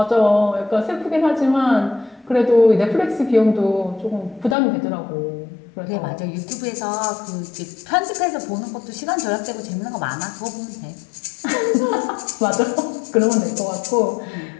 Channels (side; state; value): right; drops out; at 4.5 s